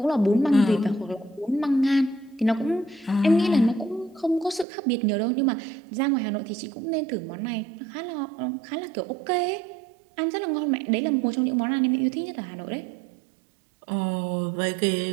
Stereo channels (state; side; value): drops out; left; at 4.7 s